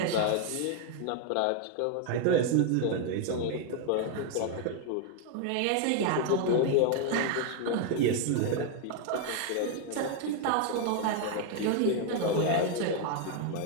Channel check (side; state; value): both; different; correlation 0.00